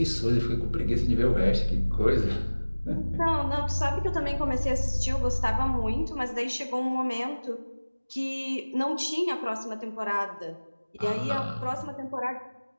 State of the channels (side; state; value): both; inverted; correlation -1.00